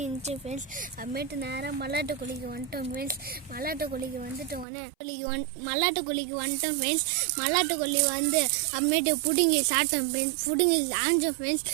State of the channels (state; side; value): drops out; left; at 4.7 s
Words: ஃப்ரெண்ட்ஸ். அப்புறமேட்டு நேராக மல்லாட்டு கொல்லிக்கு வந்துட்டோம் ஃப்ரெண்ட்ஸ். மல்லாட்டு கொல்லிக்கு வந்துட்டோம் ஃப்ரெண்ட்ஸ். மல்லாட்டு கொல்லி வந்து அப்புறமேட்டு பிடுங்கி சாப்பிட்டோம் ஃப்ரெண்ட்ஸ். பிடுங்கி ஆஞ்சோம் ஃப்ரெண்ட்ஸ்.